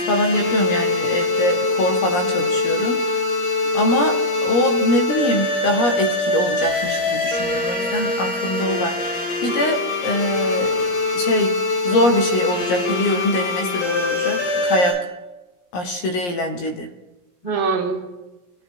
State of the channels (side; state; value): right; late; 17 ms